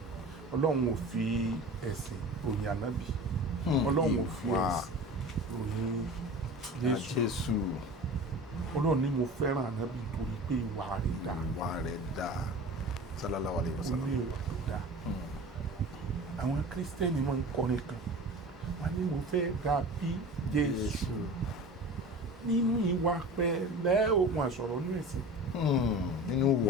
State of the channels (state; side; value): normal; both; correlation 0.36